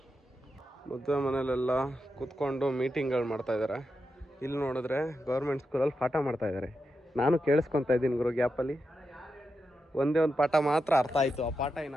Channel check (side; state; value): both; normal; correlation 0.88